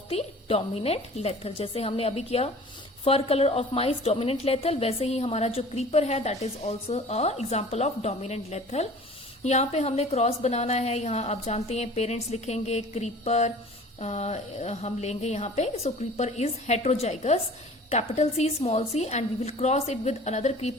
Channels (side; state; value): both; normal; correlation 0.45